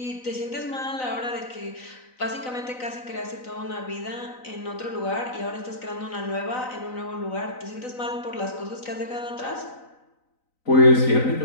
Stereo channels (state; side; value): late; right; 3.9 ms